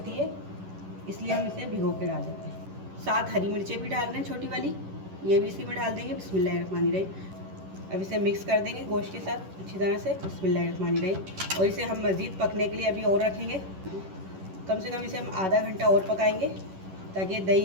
है, इसलिए हम इसे भिगो के डाल देते हैं। 7 हरी मिर्चें भी डाल रहे हैं, छोटी वाली, ये भी इसी में डाल देंगे। बिस्मिल्लाहिर्रहमानिर्रहीम। अब इसे मिक्स कर देंगे गोश्त के साथ अच्छी तरह से। बिस्मिल्लाहिर्रहमानिर्रहीम। और इसे हम मज़ीद पकने के लिए अभी और रखेंगे। कम से कम इसे हम आधा घंटा और पकाएंगे, ताकि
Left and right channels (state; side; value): late; left; 11 ms